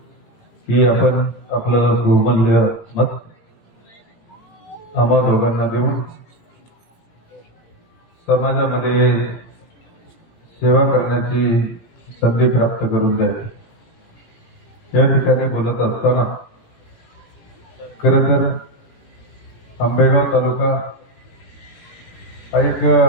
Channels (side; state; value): right; late; 18 ms